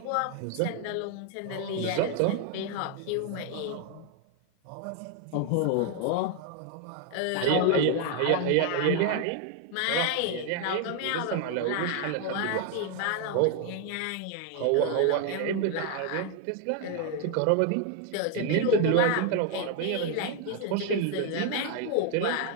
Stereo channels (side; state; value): both; different; correlation 0.01